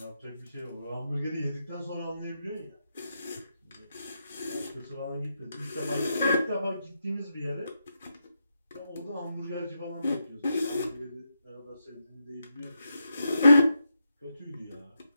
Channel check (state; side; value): inverted; both; correlation -0.85